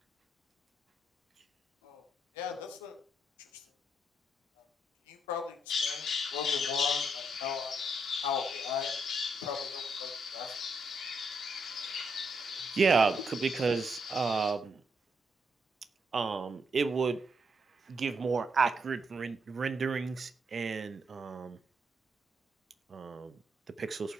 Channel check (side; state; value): both; normal; correlation 0.78